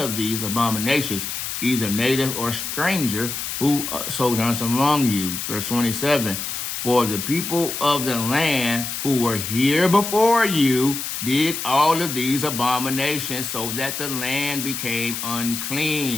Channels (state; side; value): noise; left; hiss, 5 dB below the sound